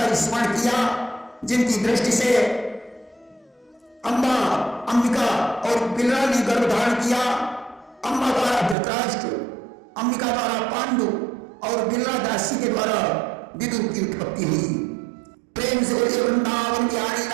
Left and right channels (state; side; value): drops out; left; at 8.8 s